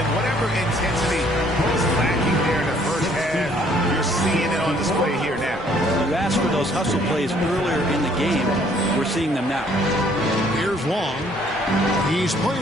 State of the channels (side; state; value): both; normal; correlation 0.62